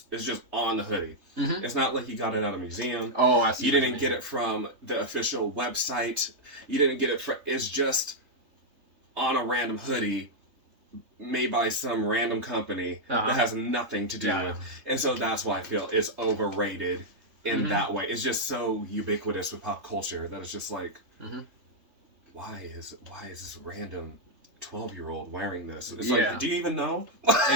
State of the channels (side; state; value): left; late; 3.2 ms